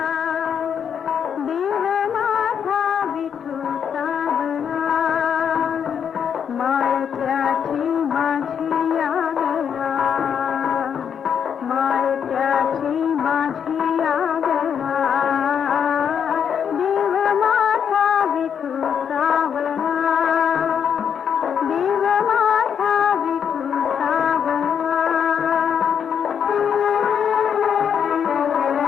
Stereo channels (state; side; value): quieter; right; 7.8 dB